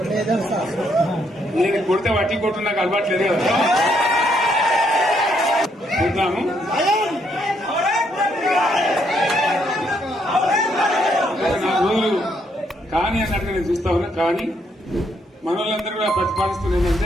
నేను కొడితే వట్టి కొట్టు నాకు అలవాట్లేదు కదా. చూద్దాము. నా రోజులు కానీ అన్నట్టుగా నేను చూస్తా ఉన్నా. కానీ మనోళ్ళందరూ కూడా ప్రతిపాదిస్తున్నది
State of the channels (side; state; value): both; normal; correlation 0.73